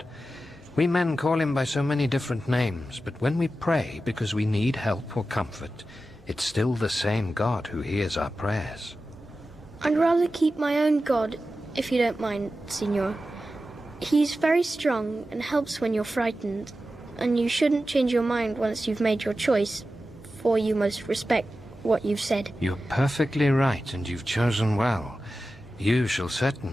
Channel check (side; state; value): both; normal; correlation 0.93